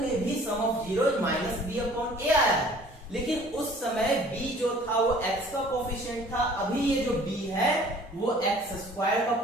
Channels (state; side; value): normal; both; correlation 0.51